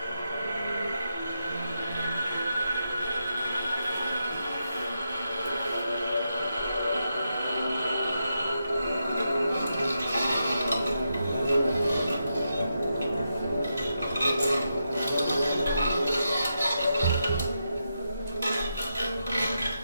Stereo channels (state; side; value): inverted; both; correlation -0.85